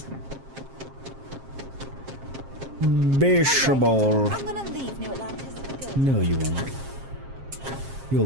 Baseball. I'm gonna leave New Atlantis for good. No, you won't. You'll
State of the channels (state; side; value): late; left; 7.5 ms